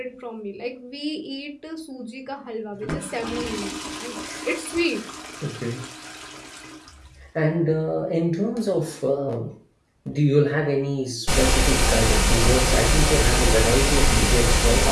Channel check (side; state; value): both; identical; correlation 1.00